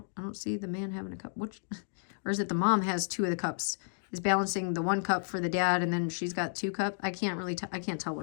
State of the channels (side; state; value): right; silent; digital silence